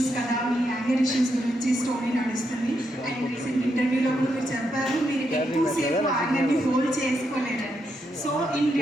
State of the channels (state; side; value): normal; both; correlation 0.81